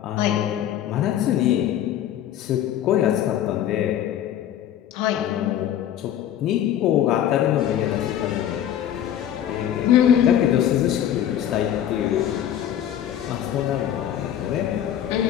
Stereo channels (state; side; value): quieter; right; 10.7 dB